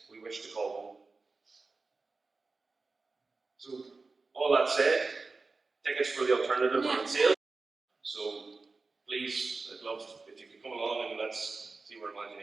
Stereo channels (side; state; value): left; quieter; 3.9 dB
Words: we wish to call home. So, all that said, tickets for the alternative are on sale. So, please, I'd love if you could come along and let's see where